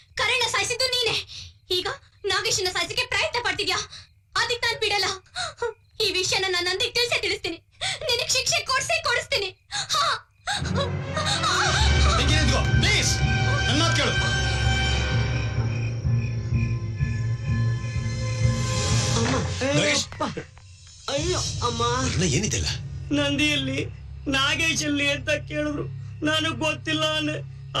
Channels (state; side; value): identical; both; correlation 1.00